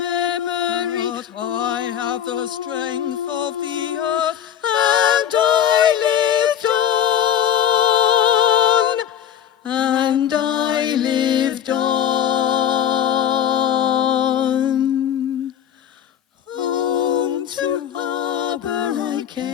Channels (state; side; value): quieter; right; 9.7 dB